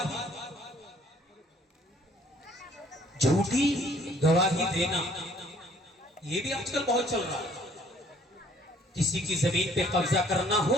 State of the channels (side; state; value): both; normal; correlation 0.59